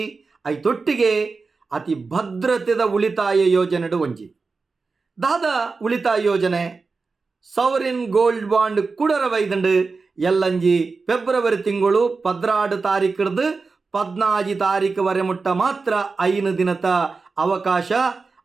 ಐತೊಟ್ಟಿಗೆ ಅತಿ ಭದ್ರತೆದ ಉಳಿತಾಯ ಯೋಜನೆಡು ಒಂಜಿ ದಾದ ಉಳಿತಾಯ ಯೋಜನೆ ಸವರಿನ್ ಗೋಲ್ಡ್ ಬಾಂಡ್ ಕುಡರ ವೈದಂಡು ಎಲ್ಲಂಜಿ ಫೆಬ್ರವರಿ ತಿಂಗಳು 16 ತಾರೀಕಿಡ್ದು 14 ತಾರೀಕು ವರೆ ಮುಟ್ಟ ಮಾತ್ರ 5 ದಿನದ ಅವಕಾಶ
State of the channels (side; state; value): left; quieter; 4.3 dB